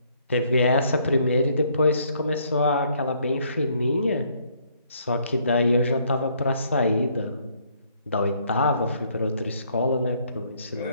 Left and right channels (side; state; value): both; inverted; correlation -0.67